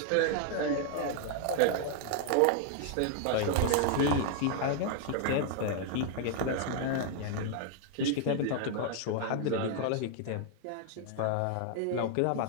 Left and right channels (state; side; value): different; both; correlation 0.00